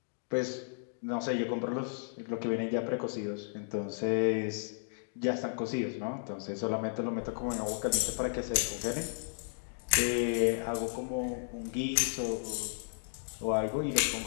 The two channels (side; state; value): right; silent; digital silence